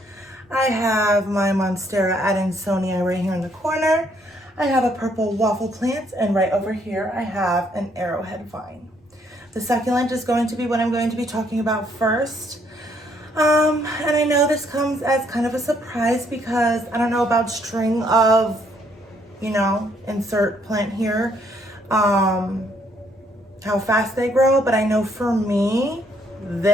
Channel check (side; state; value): both; normal; correlation 0.69